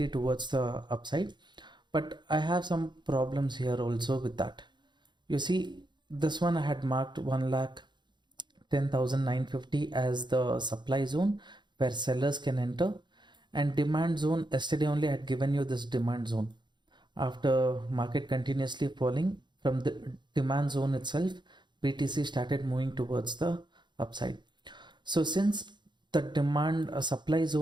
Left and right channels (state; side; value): late; left; 0.22 ms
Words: towards the upside. But I have some problems here also with that. You see, this one I had marked 1,10,950 as the supply zone where sellers can enter, and demand zone, yesterday only I had given you this demand zone. After market continuously falling from the demand zone itself, BTC started moving towards the upside. So since the demand supply